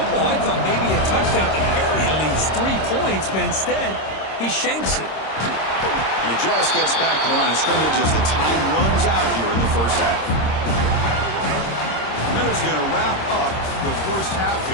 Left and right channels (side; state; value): right; late; 26 ms